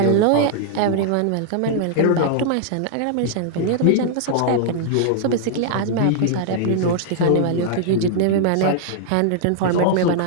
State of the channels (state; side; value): different; both; correlation -0.01